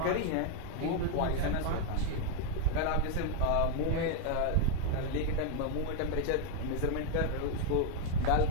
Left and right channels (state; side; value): different; both; correlation 0.01